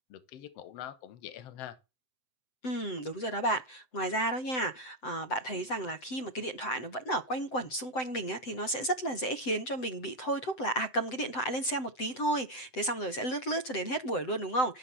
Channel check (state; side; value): late; right; 7.8 ms